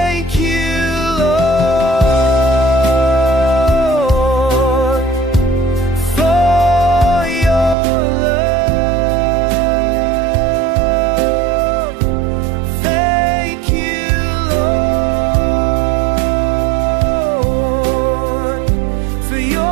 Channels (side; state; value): left; drops out; at 7.8 s